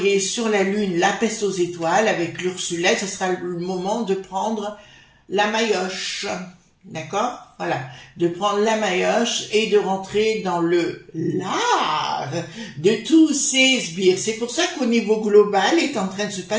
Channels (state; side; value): identical; both; correlation 1.00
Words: sur la Lune la peste aux étoiles avec l'Ursulette. Ce sera le moment de prendre la maillotche, d'accord? Voilà, de prendre la maillotche et de rentrer dans le lard de tous ces sbires. C'est pour ça qu'au niveau global est en train de se